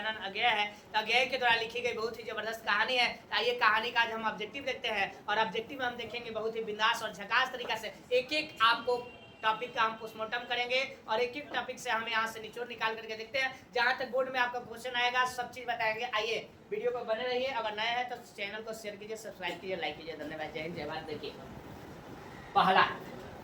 अज्ञेय है। तो अज्ञेय के द्वारा लिखी गई बहुत ही जबरदस्त कहानी है। आइए कहानी का आज हम ऑब्जेक्टिव देखते हैं, और ऑब्जेक्टिव में हम देखेंगे बहुत ही बिंदास और झकास तरीका से एक एक आपको टॉपिक का हम पोस्टमार्टम करेंगे, और एक एक टॉपिक से हम यहाँ से निचोड़ निकाल करके देखते हैं। जहाँ तक बोर्ड में आपका क्वेश्चन आएगा सब चीज बताएंगे। आइए वीडियो को बने रहिए। अगर नए हैं तो चैनल को शेयर कीजिए, सब्सक्राइब कीजिए, लाइक कीजिए। धन्यवाद। जय हिंद जय भारत। देखिए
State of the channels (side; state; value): both; identical; correlation 1.00